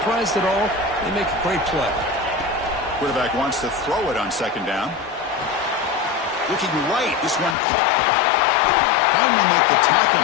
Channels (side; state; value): right; drops out; at 7.6 s